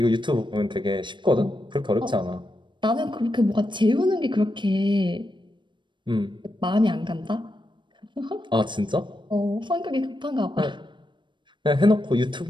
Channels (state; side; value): late; left; 0.23 ms